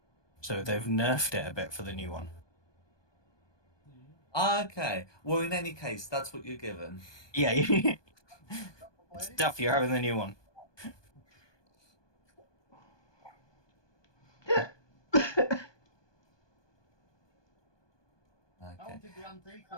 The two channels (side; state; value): right; late; 1.2 ms